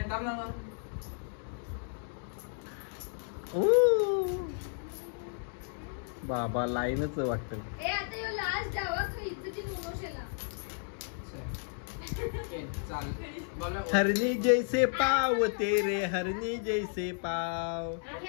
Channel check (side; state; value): right; silent; digital silence